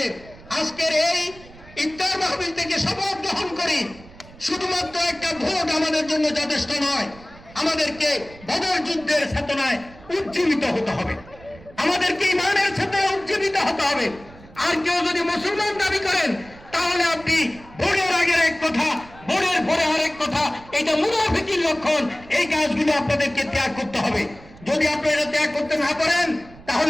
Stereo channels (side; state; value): right; noise; rumble, 21 dB below the sound